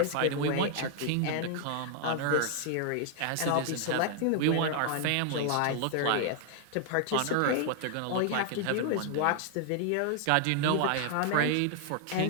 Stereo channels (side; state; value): both; different; correlation 0.00